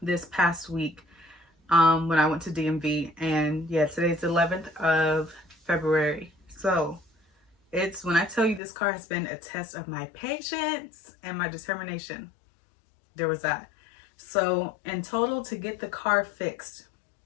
this past week when I went to DMV. And yeah, today's the 11th of February. So it's, when I tell you this car has been a test of my patience and my determination, there was that. So in total, to get the car fixed,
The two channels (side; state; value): right; drops out; at 8.6 s